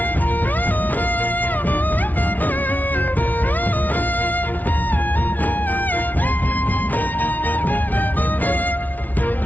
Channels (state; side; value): late; right; 0.079 ms